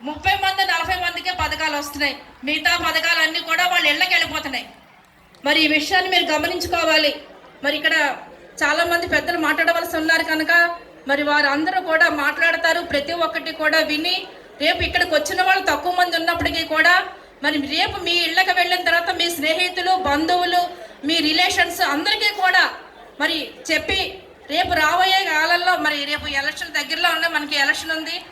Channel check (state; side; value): identical; both; correlation 1.00